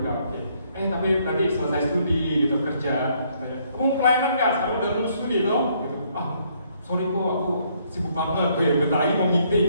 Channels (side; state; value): both; inverted; correlation -0.69